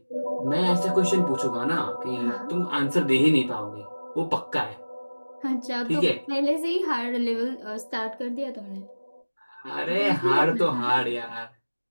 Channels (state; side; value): inverted; both; correlation -1.00